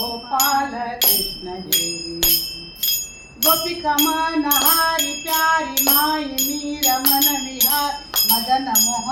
कृष्ण जय, गोपिका मन हारी प्यारी माई मीरा मन विहार मदन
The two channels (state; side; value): identical; both; correlation 1.00